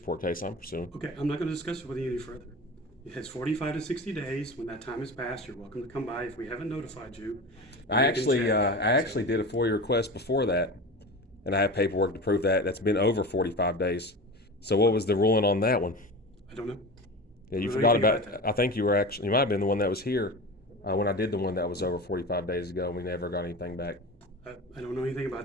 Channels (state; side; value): normal; both; correlation 0.30